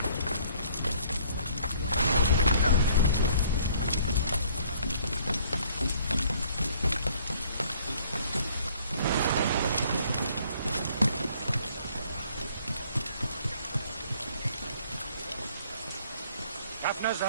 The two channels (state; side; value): inverted; both; correlation -0.60